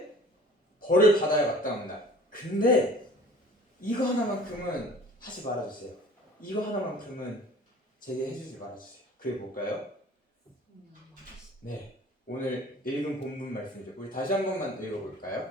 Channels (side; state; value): both; normal; correlation 0.47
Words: 벌을 받아야 마땅합니다. 근데 이거 하나만큼은 하지 말아주세요. 이거 하나만큼은 제게 해주지 말아주세요. 그게 뭘까요? 네, 오늘 읽은 본문 말씀이죠. 우리 다시 한 번만 읽어볼까요?